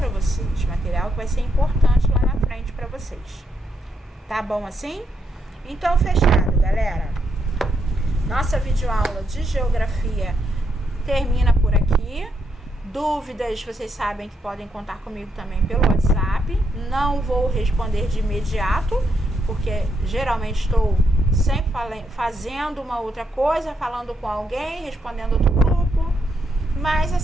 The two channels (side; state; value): both; normal; correlation 0.78